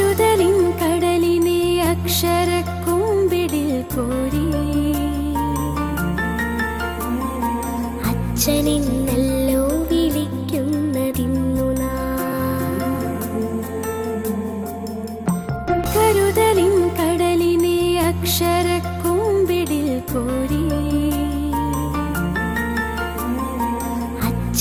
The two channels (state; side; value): identical; both; correlation 1.00